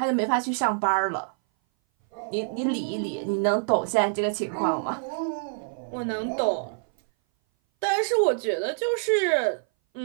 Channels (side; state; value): left; silent; 59 dB below the other